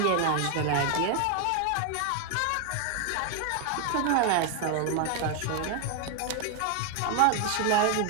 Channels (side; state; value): both; different; correlation 0.01